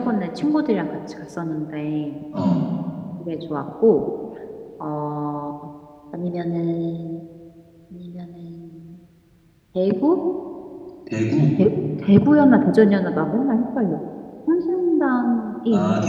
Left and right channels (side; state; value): both; identical; correlation 1.00